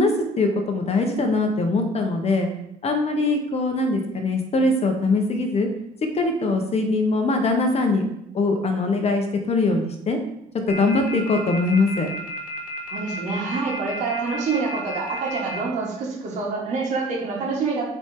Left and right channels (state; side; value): normal; both; correlation 0.52